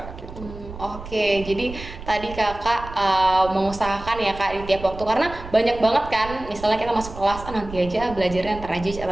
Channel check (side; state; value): right; noise; rumble, 13 dB below the sound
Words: gitu. Oke, jadi tadi kakak mengusahakan ya kak di tiap waktu, karena banyak banget kan, misalnya kita masuk kelas, nanti aja belajarnya, ntar aja